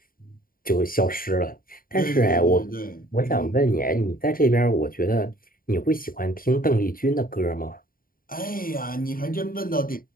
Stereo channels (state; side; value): late; right; 0.41 ms